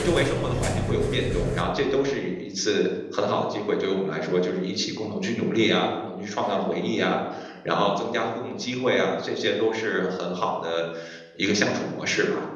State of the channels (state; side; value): identical; both; correlation 1.00